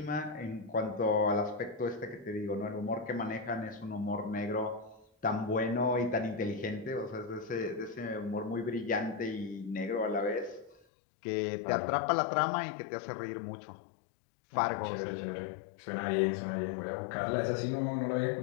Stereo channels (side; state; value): right; drops out; at 10.9 s